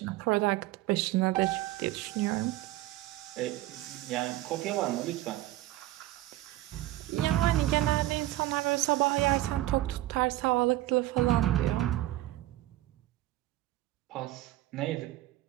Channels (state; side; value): quieter; left; 16.1 dB